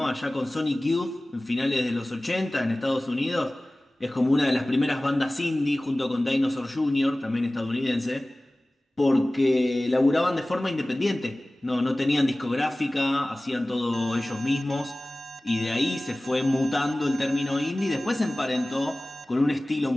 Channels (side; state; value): both; normal; correlation 0.98